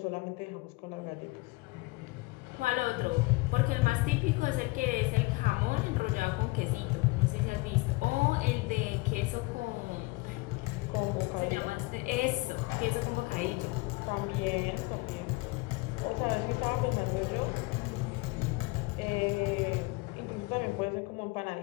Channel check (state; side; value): quieter; right; 23.5 dB